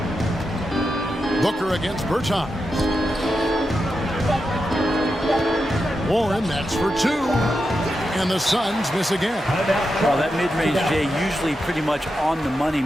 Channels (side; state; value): both; normal; correlation 0.88